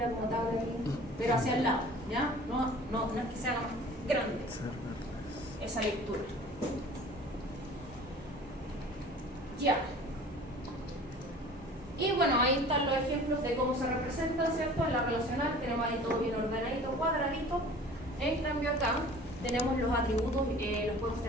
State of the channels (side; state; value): both; normal; correlation 0.45